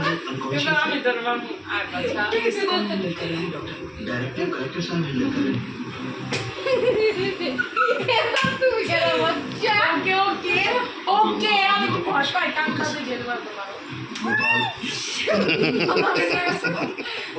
আমি তোর বাবু আর বাচ্চা कौन हैंडल कर रहे हैं डॉक्टर? डायरेक्टर कलेक्टर साहब हैंडल कर रहे हैं। তুমি কেন বাচ্চা? ওকে ওকে ওকে, আমি তো ভয় পাই কান কাছে যেতে পারবো না।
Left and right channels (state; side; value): identical; both; correlation 1.00